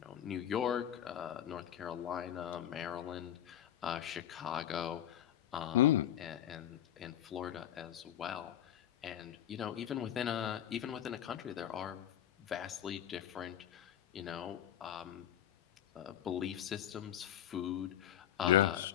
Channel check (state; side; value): quieter; right; 10.9 dB